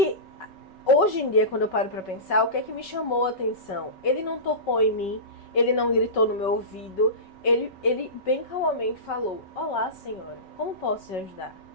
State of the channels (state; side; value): late; right; 5.3 ms